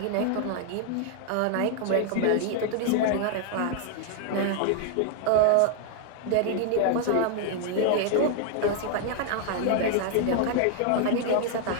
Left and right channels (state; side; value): different; both; correlation 0.00